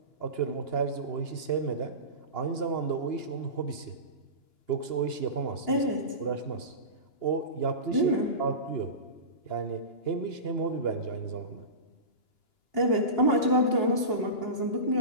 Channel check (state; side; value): late; right; 2.9 ms